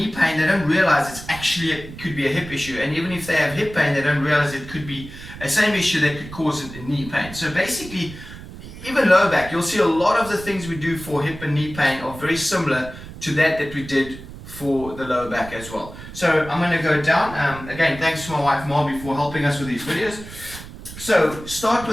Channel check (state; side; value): noise; right; rumble, 14 dB below the sound